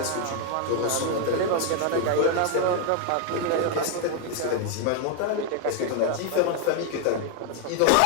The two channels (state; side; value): different; both; correlation 0.00